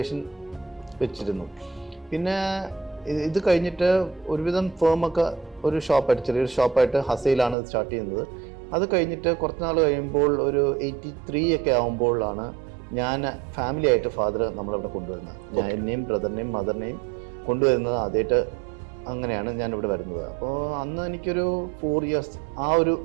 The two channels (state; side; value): drops out; left; at 7.6 s